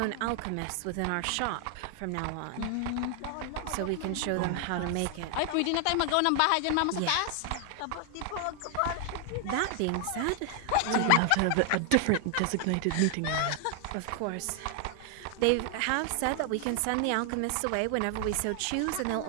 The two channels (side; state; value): both; different; correlation 0.00